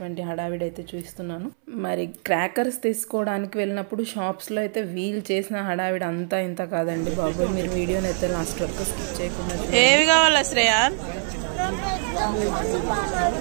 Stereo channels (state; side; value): silent; left; 62 dB below the other